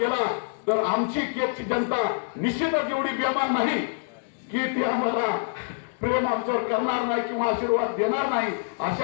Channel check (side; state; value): right; silent; digital silence